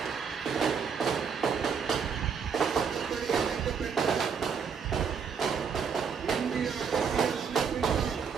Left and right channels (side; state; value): left; quieter; 6.5 dB